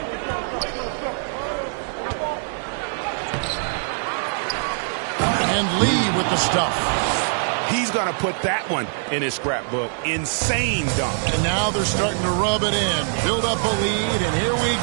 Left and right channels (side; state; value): left; silent; digital silence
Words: And Lee with the stuff. He's going to put that one in his scrapbook. Insane dunk. And now they're starting to rub it in. Build up a lead, and here we